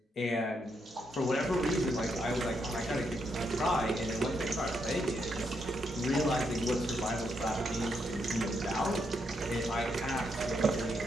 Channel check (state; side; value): normal; both; correlation 0.79